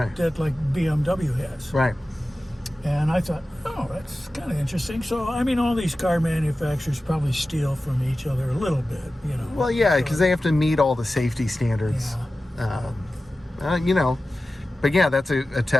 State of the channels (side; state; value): both; normal; correlation 0.95